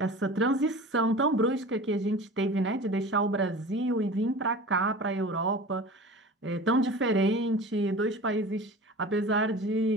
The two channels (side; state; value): both; normal; correlation 0.36